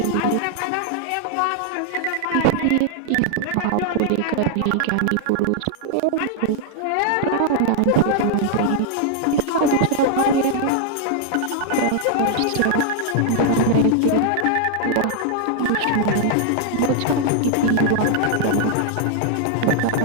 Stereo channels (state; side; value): different; both; correlation 0.00